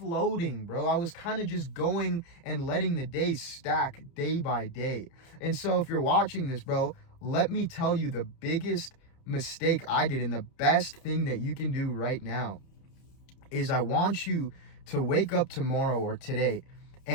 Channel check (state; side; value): late; right; 30 ms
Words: bro. I was kind of just going and letting the days stack day by day. And so if you're watching this, bro, let me tell you the biggest mistake I did, and the best thing that you can do right now is I want you to wake up tomorrow or today